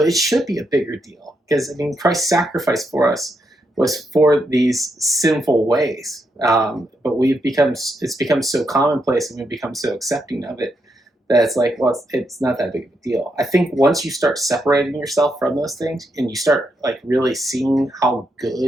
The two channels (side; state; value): both; normal; correlation 0.81